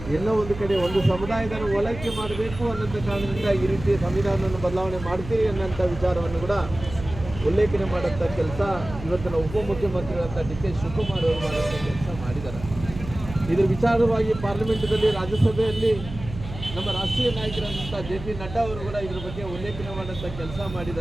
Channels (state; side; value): noise; right; hum, 12 dB below the sound